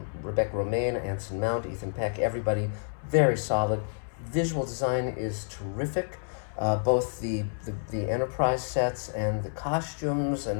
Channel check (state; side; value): silent; right; 59 dB below the other